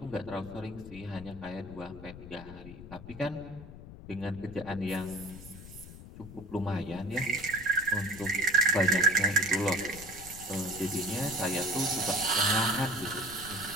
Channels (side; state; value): left; noise; rumble, 14 dB below the sound